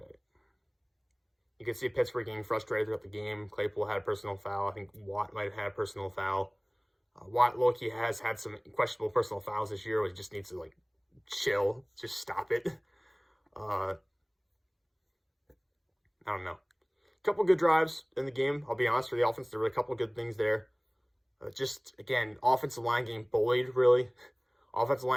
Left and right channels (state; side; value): identical; both; correlation 1.00